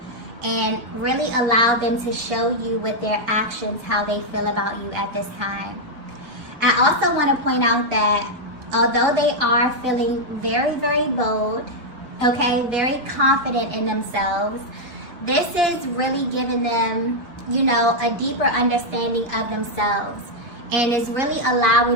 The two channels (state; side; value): late; left; 3.6 ms